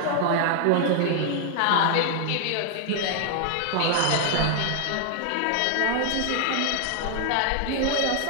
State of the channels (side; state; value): both; different; correlation 0.00